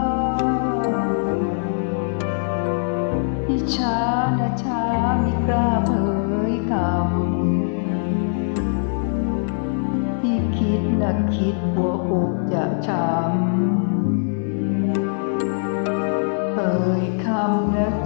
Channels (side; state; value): right; silent; 64 dB below the other